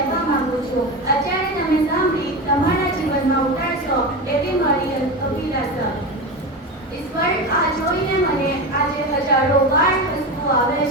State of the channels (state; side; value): normal; both; correlation 0.22